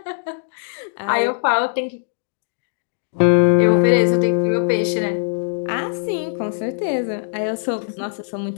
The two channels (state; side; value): silent; right; digital silence